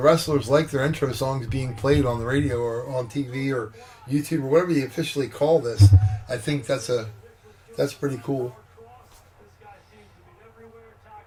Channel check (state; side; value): identical; both; correlation 1.00